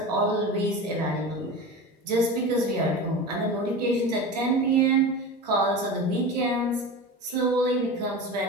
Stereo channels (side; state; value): both; normal; correlation 0.29